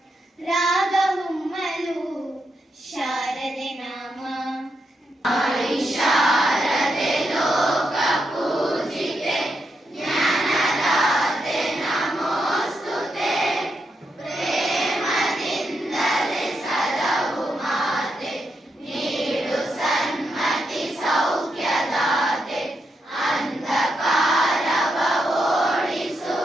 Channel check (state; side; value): normal; both; correlation 0.83